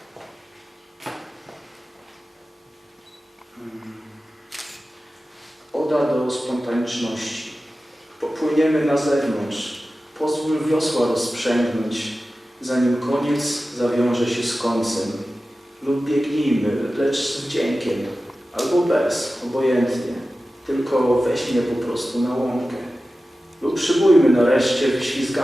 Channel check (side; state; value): both; normal; correlation 0.94